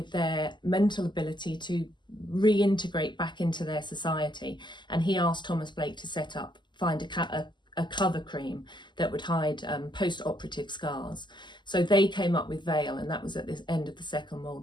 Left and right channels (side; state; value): right; late; 0.22 ms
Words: their mental ability to reintegrate back into their society. And he asked Thomas Blake to find a cover cream that would hide post-operative scars. So they came up with Veil, and that was at the end of the Second